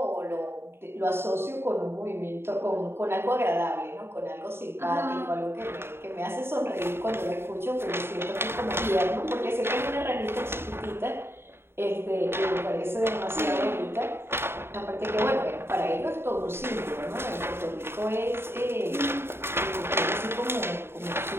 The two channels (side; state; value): left; late; 0.11 ms